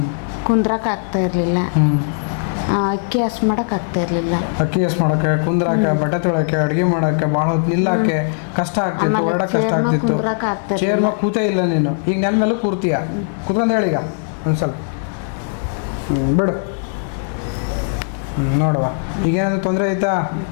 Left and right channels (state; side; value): silent; right; digital silence